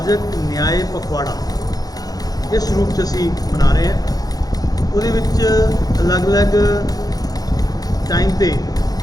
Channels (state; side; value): late; right; 0.18 ms